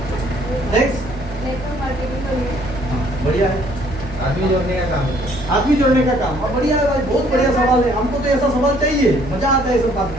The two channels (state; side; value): normal; both; correlation 0.61